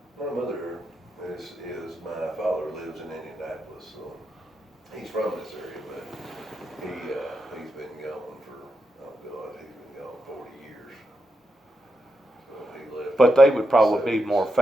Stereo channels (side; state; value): both; normal; correlation 0.86